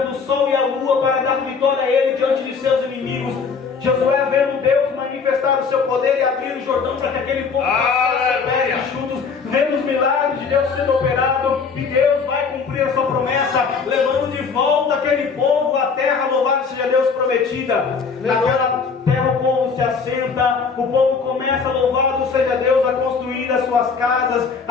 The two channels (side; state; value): right; quieter; 5.4 dB